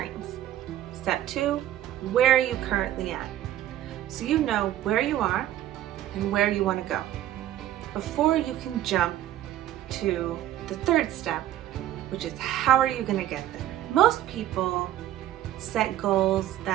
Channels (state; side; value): quieter; left; 12.9 dB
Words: Step 2, where are you currently at? So you know where you are and where you want to go before you can jump to the third step, which is how are you going to get there? Most people set goals